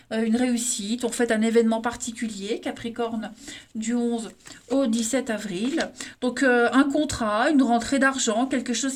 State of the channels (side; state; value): both; identical; correlation 1.00